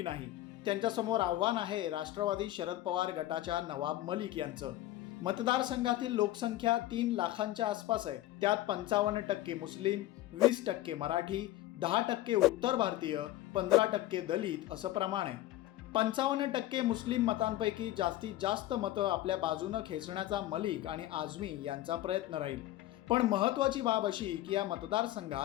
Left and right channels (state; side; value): quieter; right; 15.2 dB